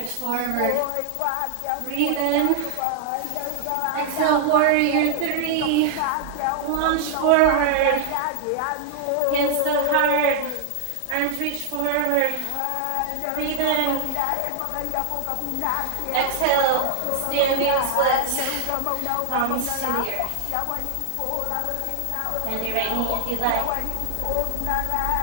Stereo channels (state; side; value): different; both; correlation 0.00